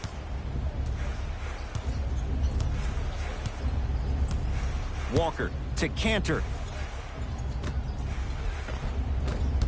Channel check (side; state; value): both; identical; correlation 1.00